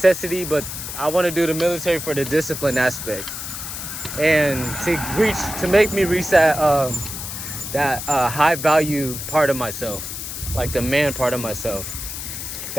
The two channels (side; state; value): left; noise; hiss, 7 dB below the sound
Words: But I want to do the military for the discipline aspect, and to make me reach that high value part of myself, like the man part of myself,